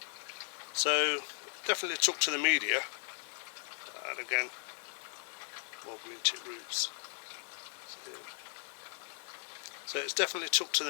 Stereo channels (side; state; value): right; silent; 53 dB below the other